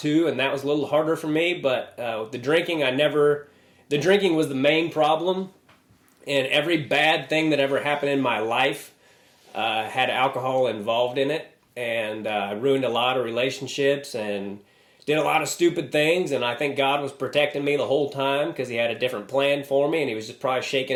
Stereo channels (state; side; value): identical; both; correlation 1.00